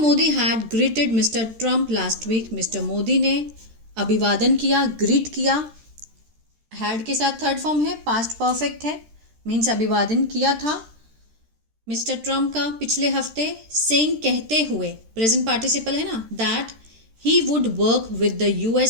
had greeted mister Trump last week, mister Modi ने अभिवादन किया, ग्रीट किया, हैड के साथ थर्ड फॉर्म है, पास्ट परफेक्ट है, मीन्स अभिवादन किया था मिस्टर ट्रम्प का पिछले हफ्ते, सेइंग कहते हुए, प्रेजेंट पार्टिसिपल है ना, that he would work with the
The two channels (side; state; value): left; late; 13 ms